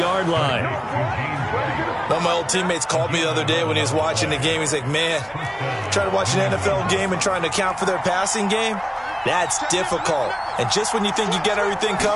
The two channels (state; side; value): identical; both; correlation 1.00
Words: line. One of my old teammates called me the other day when he was watching the game. He's like, man, trying to watch an NFL game and trying to account for their passing game, that's difficult. And just when you think you get everything